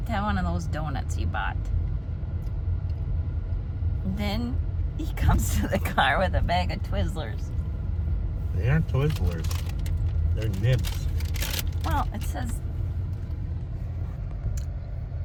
to have one of those donuts you bought. Then he comes to the car with a bag of Twizzlers. They aren't Twizzlers. They're nibs. Well, it says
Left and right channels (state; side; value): identical; both; correlation 1.00